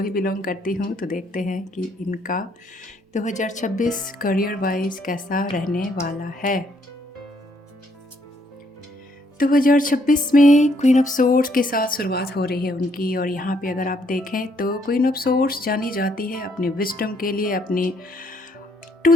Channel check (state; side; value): normal; both; correlation 0.70